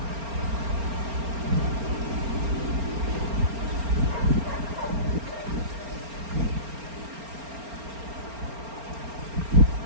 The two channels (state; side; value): late; left; 4.3 ms